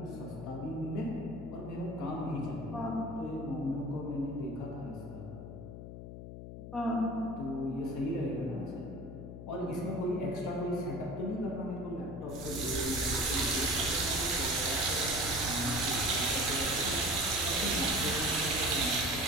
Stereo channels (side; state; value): left; noise; hum, 10 dB below the sound